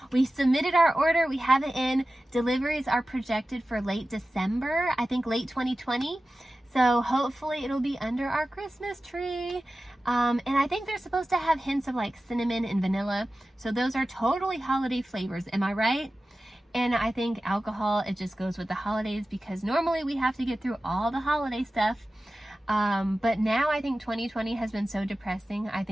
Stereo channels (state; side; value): normal; both; correlation 0.95